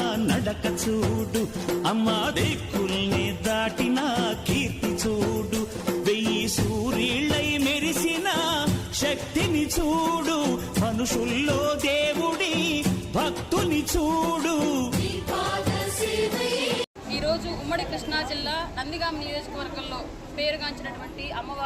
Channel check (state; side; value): identical; both; correlation 1.00